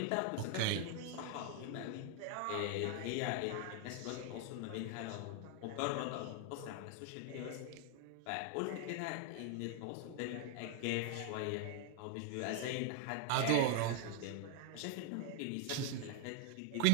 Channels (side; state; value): both; different; correlation 0.01